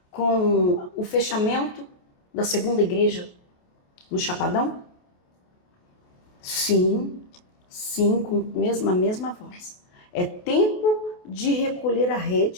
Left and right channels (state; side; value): late; right; 28 ms